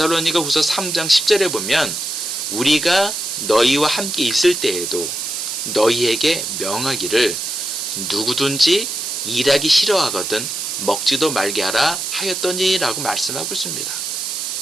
후서 3장 10절에 보면 우리가 너희와 함께 있을 때에도 너희에게 명하기를 누구든지 일하기 싫어하거든 먹지도 말게 하라 하였더니 라고 말씀하고 있습니다.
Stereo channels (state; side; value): noise; right; hiss, 4 dB below the sound